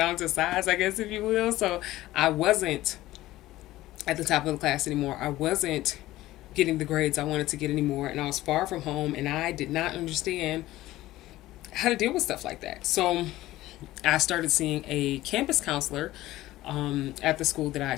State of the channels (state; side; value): quieter; right; 16.3 dB